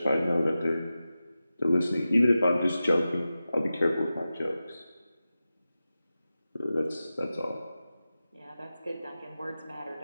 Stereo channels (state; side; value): inverted; both; correlation -0.94